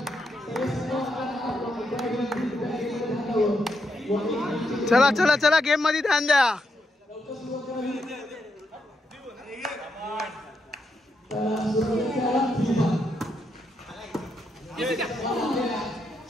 चला गेम मध्ये ध्यान द्या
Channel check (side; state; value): both; normal; correlation 0.81